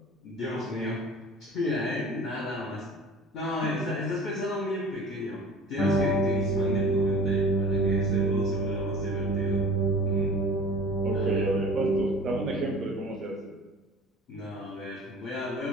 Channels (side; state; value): both; normal; correlation 0.43